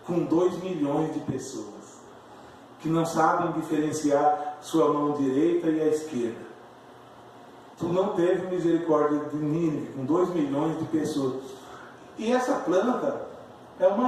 com 2 milhões de pessoas que não sabem diferenciar sua mão direita e a esquerda. Tu não teve misericórdia de Nínive com 2 milhões de pessoas. E essa planta é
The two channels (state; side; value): identical; both; correlation 1.00